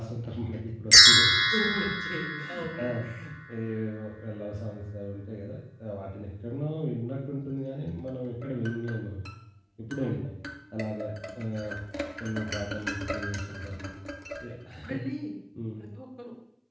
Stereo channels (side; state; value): both; identical; correlation 1.00